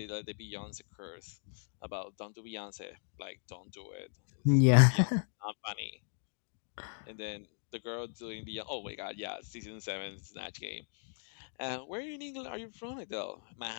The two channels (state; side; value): silent; right; digital silence